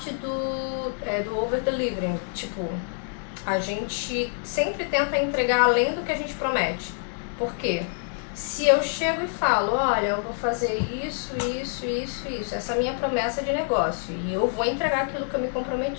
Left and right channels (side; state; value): right; silent; 58 dB below the other